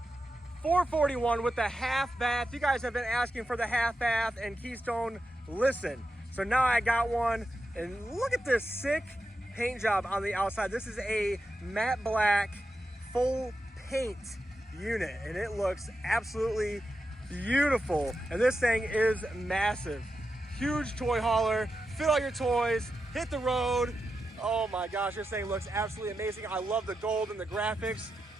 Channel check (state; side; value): normal; both; correlation 0.89